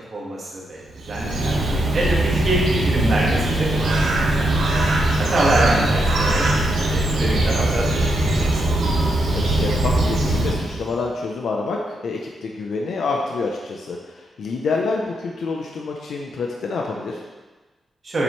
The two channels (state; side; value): normal; both; correlation 0.81